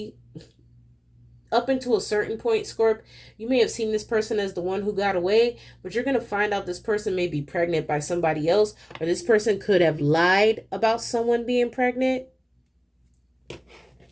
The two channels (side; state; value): both; identical; correlation 1.00